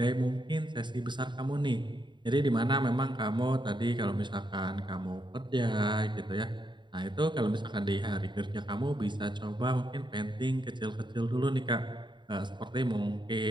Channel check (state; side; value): late; left; 0.22 ms